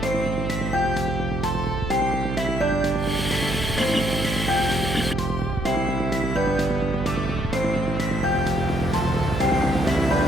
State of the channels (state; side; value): noise; right; hum, 4 dB below the sound